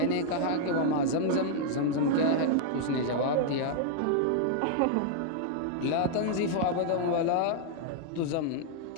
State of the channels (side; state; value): both; different; correlation -0.01